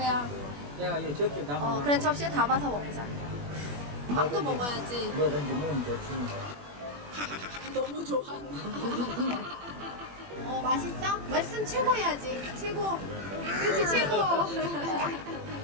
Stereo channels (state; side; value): late; left; 21 ms